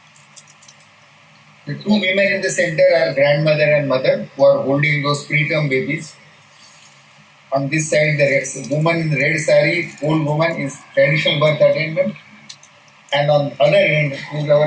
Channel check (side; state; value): both; identical; correlation 1.00